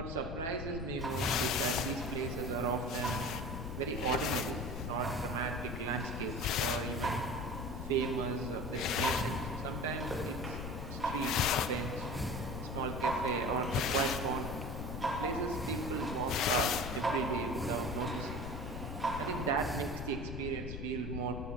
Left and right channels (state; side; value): noise; left; rumble, 6 dB below the sound